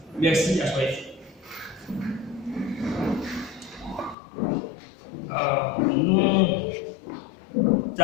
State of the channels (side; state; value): right; drops out; at 4.2 s